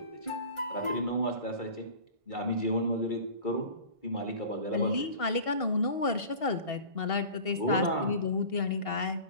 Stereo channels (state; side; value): late; left; 1.5 ms